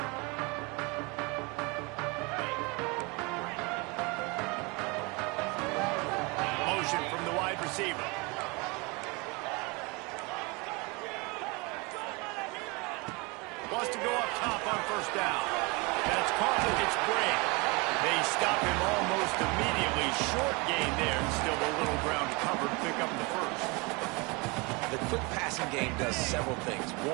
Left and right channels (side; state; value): left; quieter; 27.9 dB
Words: From the wide receiver. Wants to go up top on first down. That's caught with its break. They stop him almost immediately. Short gain there, and still a little ground to cover to pick up the first. The quick passing game does several things.